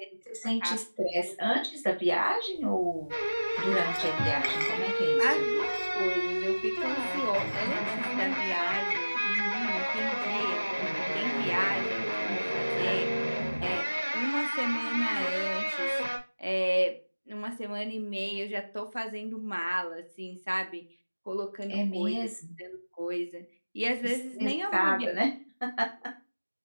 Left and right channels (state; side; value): inverted; both; correlation -1.00